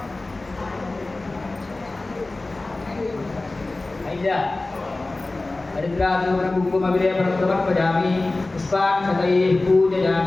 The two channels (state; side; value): quieter; right; 3.1 dB